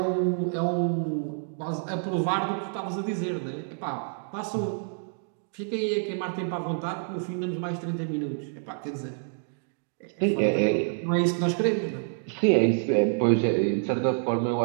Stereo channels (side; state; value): left; silent; digital silence